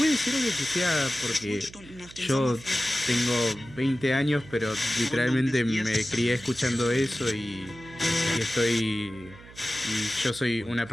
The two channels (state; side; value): noise; right; hum, 20 dB below the sound